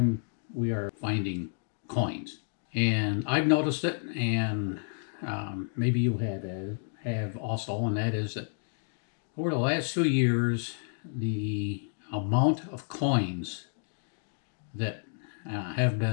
we are finding coins. And I've noticed it, and maybe you have also, and that is that over the last few years, the amount of coins that have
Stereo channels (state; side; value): silent; right; digital silence